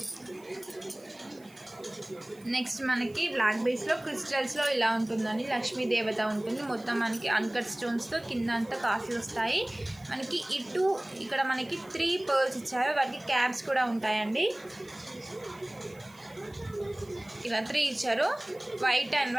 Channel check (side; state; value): right; noise; hiss, 27 dB below the sound